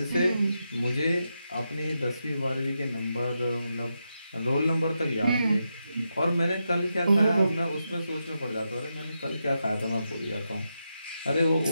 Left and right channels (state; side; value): inverted; both; correlation -0.86